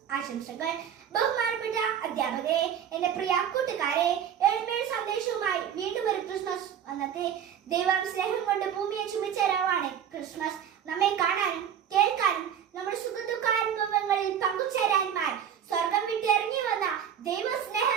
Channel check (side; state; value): left; quieter; 8.9 dB